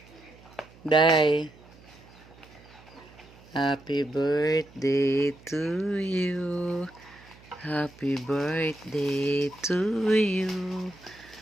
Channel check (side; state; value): right; noise; hum, 23 dB below the sound